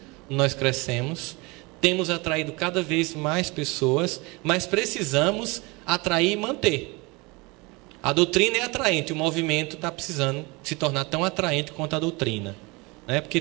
nós crescemos. Temos atraído cada vez mais pessoas, mas precisamos atrair e manter. A doutrina é atraente, o movimento está precisando se tornar tão atraente quanto a doutrina, né?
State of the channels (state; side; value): quieter; left; 26.0 dB